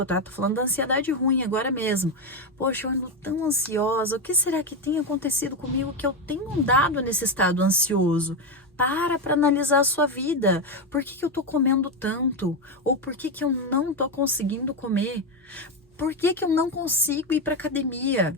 tá? Tô falando da ansiedade ruim agora mesmo. Poxa, eu ando tão ansiosa. O que será que tem acontecido comigo que eu tenho andado nesse estado ansioso? Para analisar a sua vida. Por que eu tô comendo tanto? Ou por que eu não tô conseguindo comer? Por que eu não consigo ir para academia?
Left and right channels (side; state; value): both; normal; correlation 0.10